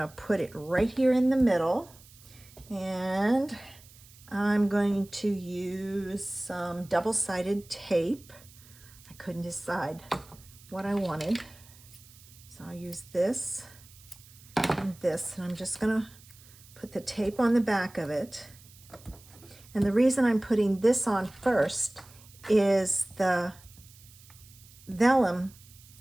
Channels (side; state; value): right; noise; hiss, 23 dB below the sound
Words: put it right here in the middle. And I'm going to use some double-sided tape. I couldn't decide what I wanted. So I'll use this and this, and I'm just going to put the tape on the back of it. And the reason I'm putting this on first is the vellum.